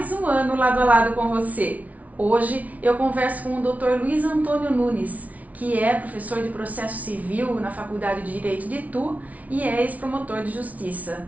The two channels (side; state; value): left; late; 0.071 ms